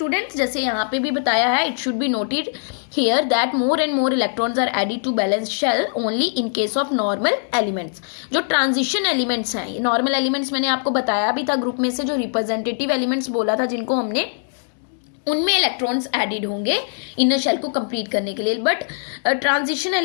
जैसे यहाँ पे भी बताया है, it should be noted here that more and more electrons are added to balance shell only in case of normal elements. जो ट्रांजिशन एलिमेंट्स हैं, ये नॉर्मल एलिमेंट्स मैंने आपको बताया भी था ग्रुप में से, जो रिप्रेजेंटेटिव एलिमेंट्स बोला था जिनको हमने, उनमें इलेक्ट्रॉन्स एडेड होंगे इनर शेल को कंप्लीट करने के लिए। बट ट्रांजिशन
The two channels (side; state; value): right; silent; digital silence